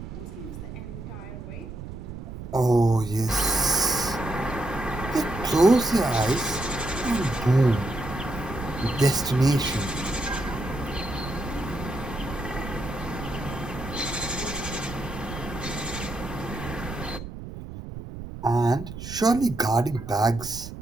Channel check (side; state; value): right; noise; rumble, 10 dB below the sound